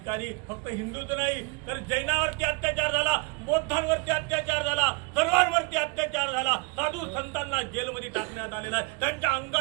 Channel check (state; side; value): quieter; left; 31.7 dB